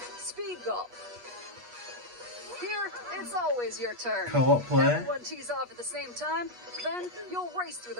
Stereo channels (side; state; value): left; late; 8.3 ms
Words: Speed Golf. Here, it's always your turn. Co-op play. Everyone tees off at the same time, then you'll race through